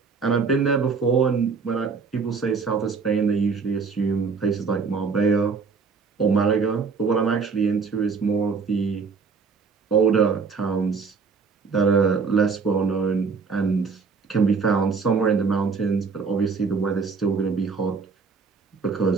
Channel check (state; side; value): quieter; left; 5.1 dB